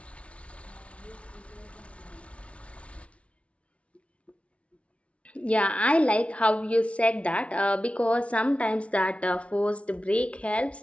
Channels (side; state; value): right; late; 0.062 ms